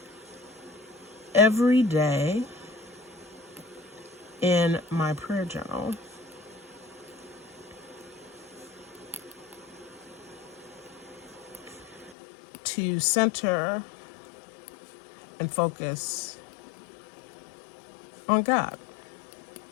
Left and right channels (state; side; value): drops out; right; at 12.2 s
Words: every day in my prayer journal to center and focus on God.